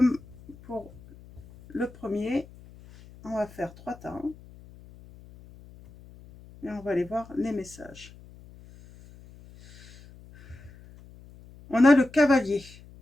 pour le premier, on va faire 3 temps et on va aller voir les messages. On a le cavalier.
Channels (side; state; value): left; noise; hum, 21 dB below the sound